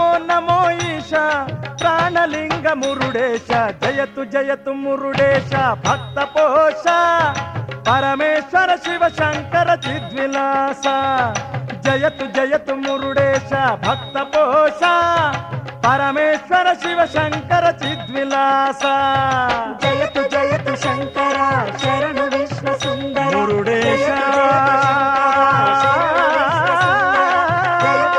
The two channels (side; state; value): both; identical; correlation 1.00